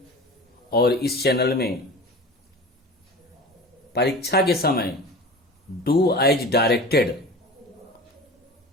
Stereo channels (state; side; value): normal; both; correlation 0.35